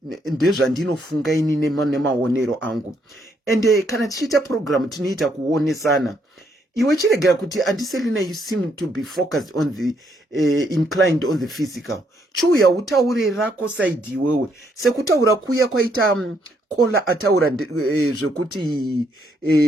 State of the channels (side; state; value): both; normal; correlation 0.73